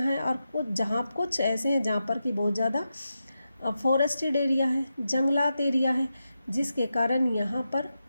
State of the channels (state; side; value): inverted; both; correlation -0.89